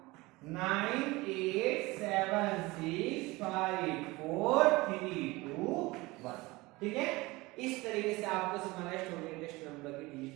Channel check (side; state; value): left; quieter; 21.9 dB